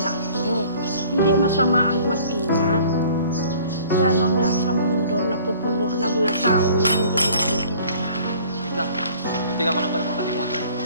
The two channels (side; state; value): both; inverted; correlation -0.51